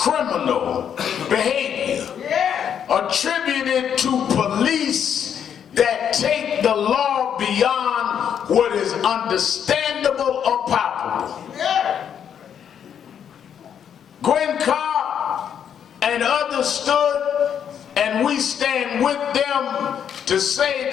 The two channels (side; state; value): right; quieter; 8.5 dB